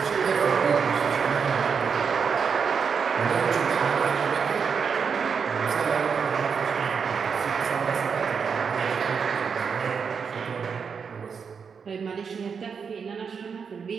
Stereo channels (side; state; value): left; quieter; 6.1 dB